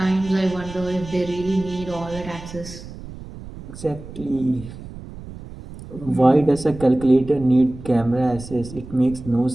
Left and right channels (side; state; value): right; noise; rumble, 14 dB below the sound